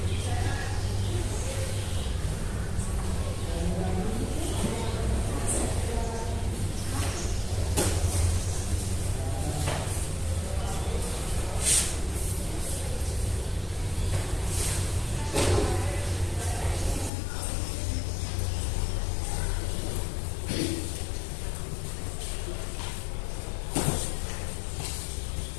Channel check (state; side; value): drops out; right; at 17.1 s